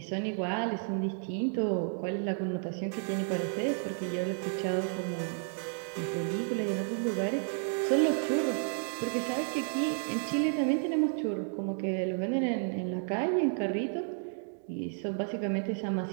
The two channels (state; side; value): silent; left; 57 dB below the other